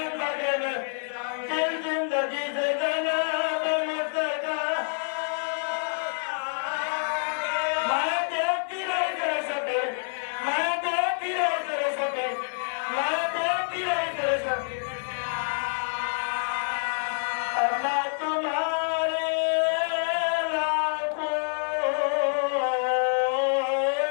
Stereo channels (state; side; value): silent; right; digital silence